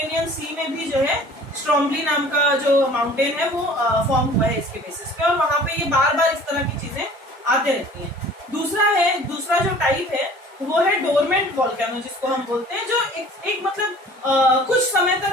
सी में भी जो है स्ट्रोम्बली नाम का जो माउंटेन है वो फॉर्म हुआ है इसके बेसिस पे, और वहां पे ये बार इस तरह की चीजें आते रहती हैं। दूसरा जो टाइप है वो है डोरमेंट वोल्केनो, जिसको हम बोलते हैं, जो एक मतलब कुछ समय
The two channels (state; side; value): normal; both; correlation 0.48